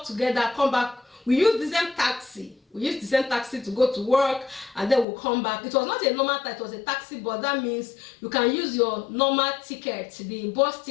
together, come back. We use the same taxi. We used the same taxi to go to work, and then we'll come back. It was not a normal taxi, it was a taxi, but that means you can use your normal ticket, the bus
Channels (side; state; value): right; drops out; at 5.1 s